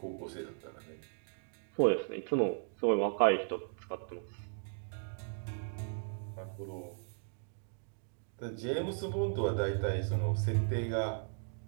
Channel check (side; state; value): left; silent; digital silence